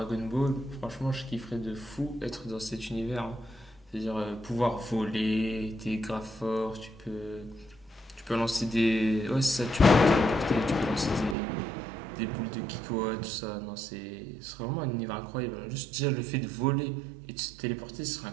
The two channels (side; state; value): left; drops out; at 11.4 s